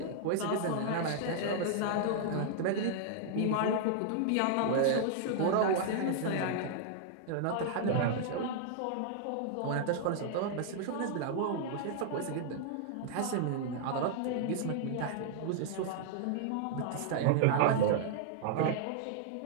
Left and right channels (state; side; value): different; both; correlation -0.01